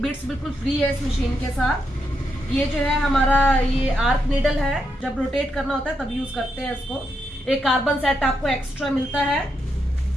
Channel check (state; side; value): normal; both; correlation 0.82